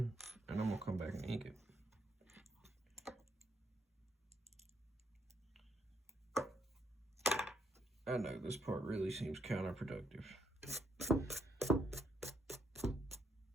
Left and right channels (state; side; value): normal; both; correlation 0.74